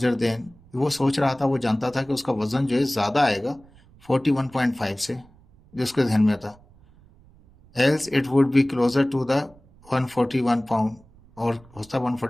than, वो सोच रहा था, वो जानता था कि उसका वजन जो है ज़्यादा आएगा 41.5 से, जो उसके ध्यान में था। Else it would be closer to the 141 pound, और होता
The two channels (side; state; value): right; noise; rumble, 27 dB below the sound